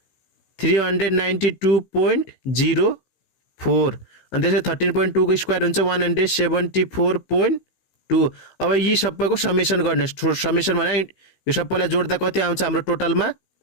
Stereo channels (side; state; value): right; late; 16 ms